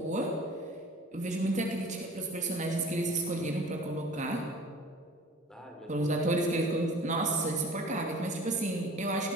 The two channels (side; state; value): both; normal; correlation 0.45